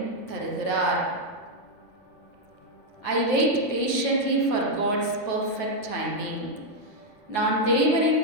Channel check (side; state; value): right; late; 9.6 ms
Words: தருகிறார். I wait patiently for God's perfect timing. நான் தேவனின்